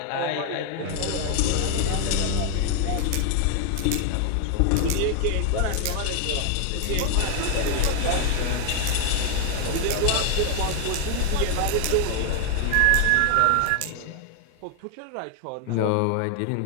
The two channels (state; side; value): different; both; correlation 0.00